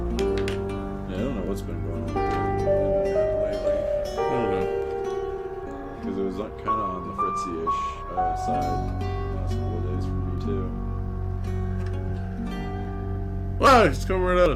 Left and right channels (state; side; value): identical; both; correlation 1.00